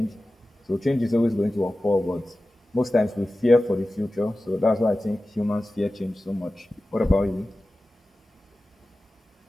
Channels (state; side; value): normal; both; correlation 0.95